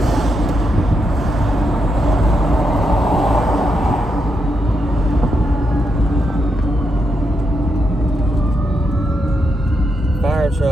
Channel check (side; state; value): both; normal; correlation 0.82